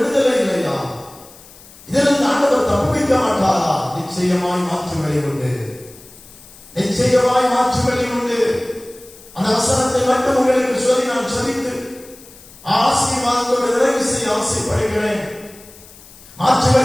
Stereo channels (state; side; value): noise; left; hiss, 22 dB below the sound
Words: இல்லையா? இதிலிருந்து ஆண்டவர் தப்புவிக்க மாட்டாரா? நிச்சயமாய் மாற்று வழி உண்டு. நிச்சயமாய் மாற்று வழி உண்டு. அந்த வசனத்தை மட்டும் உங்களுக்கு சொல்லி நான் சொல்லித்து ஆசீர்வாதத்தோடு நிறைவு செய்ய ஆசைப்படுகிறேன். மாற்று